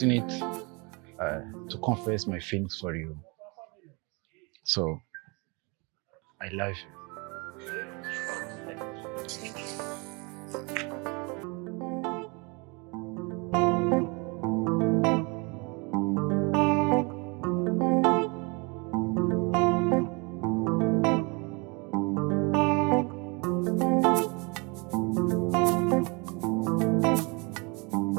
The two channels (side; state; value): left; quieter; 30.0 dB